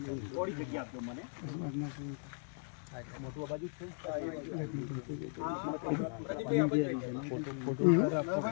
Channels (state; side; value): silent; right; 53 dB below the other